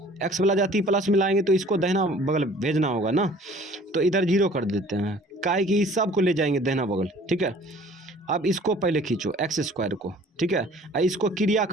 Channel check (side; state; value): both; normal; correlation 0.51